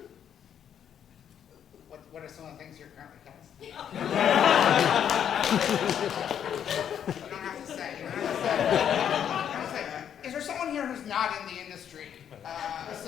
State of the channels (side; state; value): right; quieter; 9.0 dB